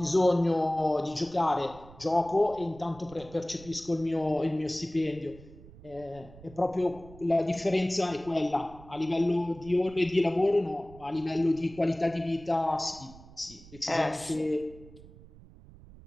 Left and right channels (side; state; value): right; noise; rumble, 20 dB below the sound